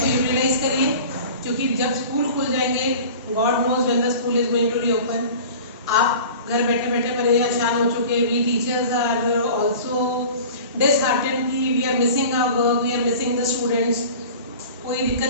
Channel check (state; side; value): inverted; both; correlation -0.40